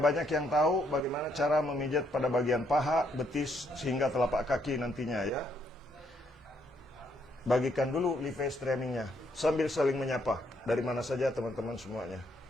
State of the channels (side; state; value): both; normal; correlation 0.72